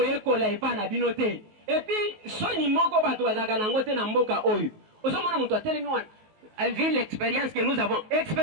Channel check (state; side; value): late; left; 19 ms